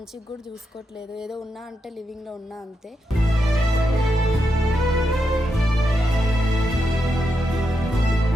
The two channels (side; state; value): both; normal; correlation 0.84